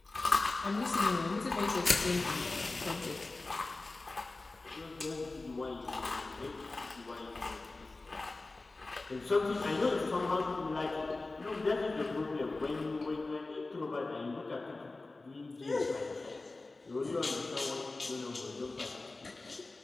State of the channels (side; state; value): right; quieter; 3.3 dB